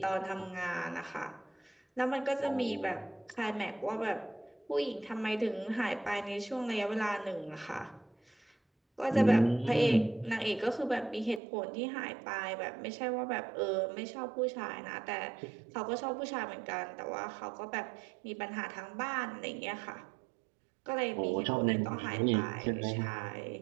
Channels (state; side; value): drops out; left; at 11.4 s